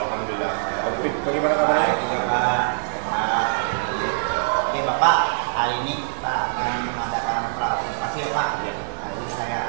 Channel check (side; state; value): left; silent; digital silence